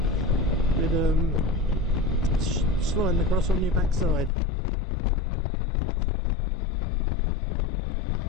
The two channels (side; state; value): right; drops out; at 4.3 s